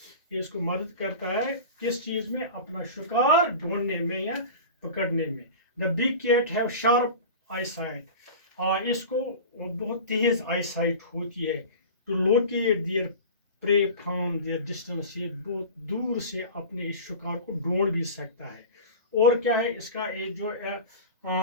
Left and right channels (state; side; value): inverted; both; correlation -0.34